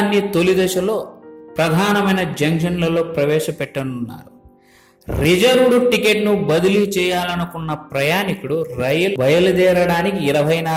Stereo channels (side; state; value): both; identical; correlation 1.00